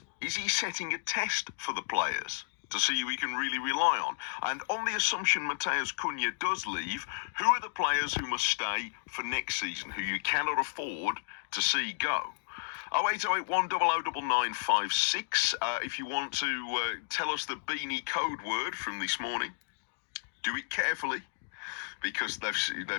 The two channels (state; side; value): silent; right; digital silence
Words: is he setting a test for the players to see who he can really rely on? And on the assumption Mateus Cunha does leave, who are the players who must stay for next season, who you cannot afford to see go? 08081 009956. If you want to tell us the Beanie code word from this morning, do it carefully, because